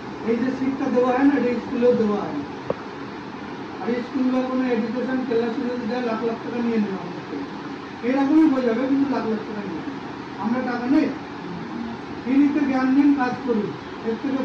এই যে শিক্ষা দেওয়া হয় না, এটা স্কুলেও দেওয়া হয় না। আর স্কুল বা কোনো এডুকেশন ক্লাস যদি দেয়, লাখ লাখ টাকা নিয়ে নেওয়া আমাদের থেকে, এইরকমই হয়ে যাবে, কিন্তু লাখ লাখ টাকা নিয়ে আমরা টাকা নেই। ফ্রিতে জ্ঞান নিন, কাজ করুন, এর থেকে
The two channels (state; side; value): identical; both; correlation 1.00